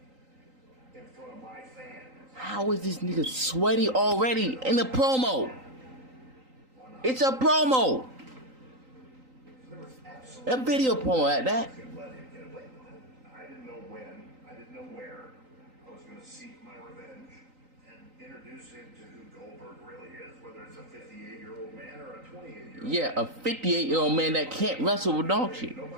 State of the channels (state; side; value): late; left; 3.9 ms